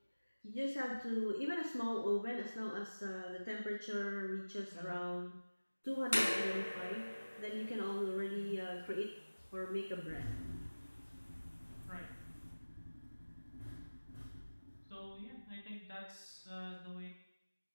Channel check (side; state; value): both; inverted; correlation -1.00